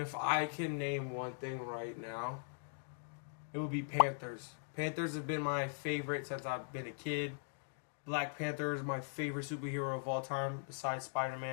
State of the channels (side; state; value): right; silent; digital silence